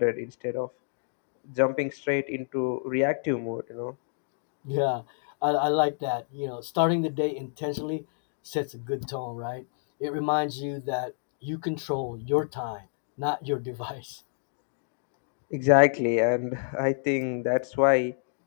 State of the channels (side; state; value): right; silent; digital silence